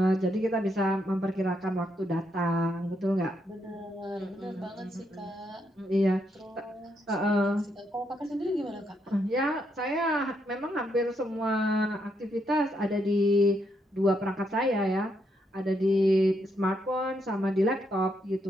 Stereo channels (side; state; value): both; normal; correlation 0.78